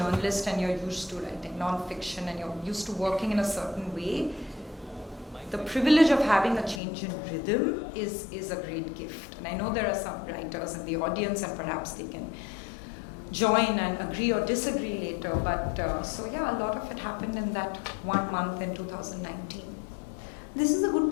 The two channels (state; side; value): drops out; right; at 6.8 s